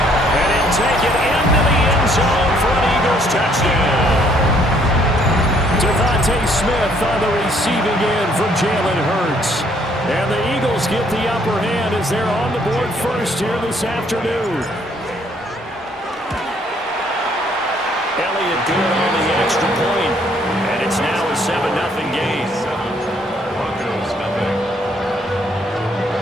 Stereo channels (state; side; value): normal; both; correlation 0.65